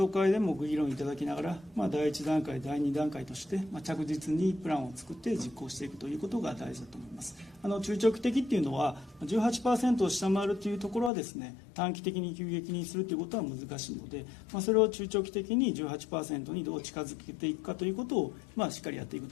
討会でもご議論いただきながら、第1段階、第2段階として、着実にプランを作って実行していくということが大事だと思います。中長期的っていうのは 18% を下回るというところはですね、短期的に急激にするということは難しいので、それを中長期的に 18% にどう近づけていくかということを、しっかりやっていく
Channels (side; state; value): right; drops out; at 11.1 s